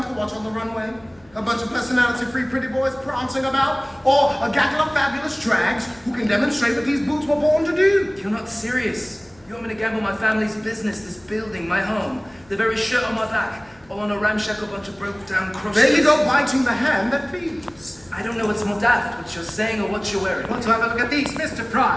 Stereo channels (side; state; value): left; noise; hum, 29 dB below the sound